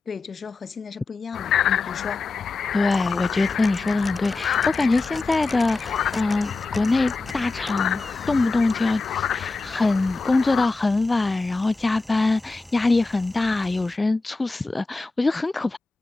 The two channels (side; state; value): right; quieter; 3.5 dB